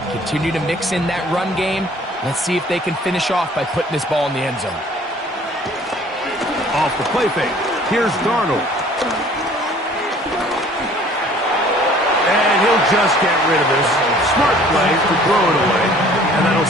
Continue to mix in that run game. Let's see if they can finish off by putting this ball in the end zone. Off the play fake. Here's Darnold. And he'll just get rid of this. Smart play to throw it away. And that'll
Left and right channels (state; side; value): normal; both; correlation 0.53